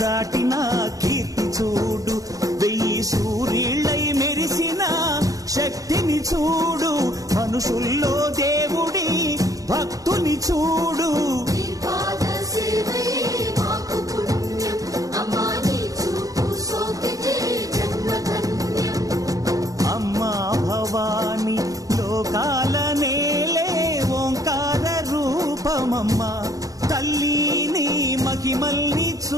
కీర్తి చూడు, 1000 సూర్యుళ్ళై మెరిసిన శక్తిని చూడు, మనుషుల్లో దేవుడి భక్తుని చూడు. అమ్మా భవాని లోకాల నేలే ఓంకార రూపమమ్మా, తల్లిని మహిమల్ని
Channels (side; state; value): left; late; 0.17 ms